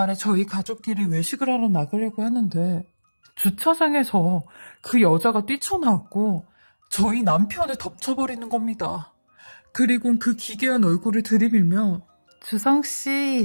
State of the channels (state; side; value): inverted; both; correlation -1.00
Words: 저희 가족끼리 외식을 하러 나가려고 하는데 주차장에서 그 여자가 뛰쳐나왔고 저희 남편을 덮쳐버리는 겁니다. 그리고 그 기괴한 얼굴을 들이밀며